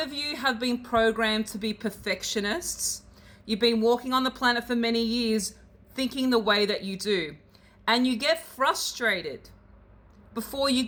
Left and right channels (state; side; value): identical; both; correlation 1.00